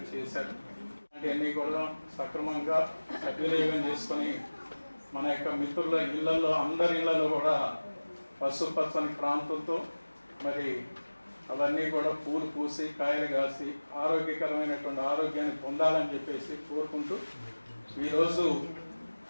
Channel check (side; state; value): both; inverted; correlation -1.00